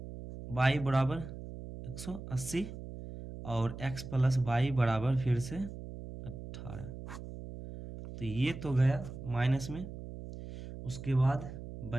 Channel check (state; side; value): noise; right; hum, 11 dB below the sound